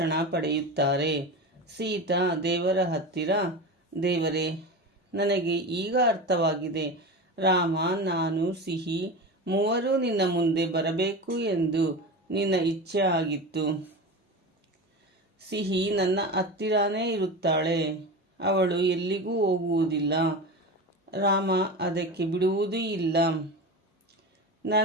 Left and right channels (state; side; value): normal; both; correlation 0.26